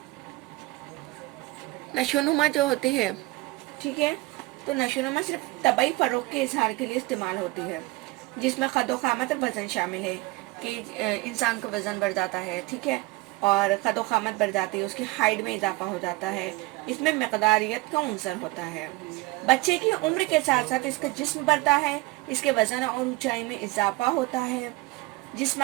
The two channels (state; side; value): quieter; left; 21.2 dB